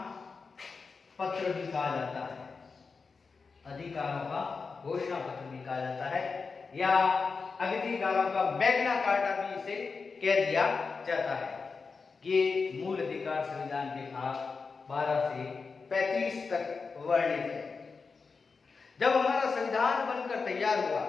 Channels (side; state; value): right; quieter; 4.8 dB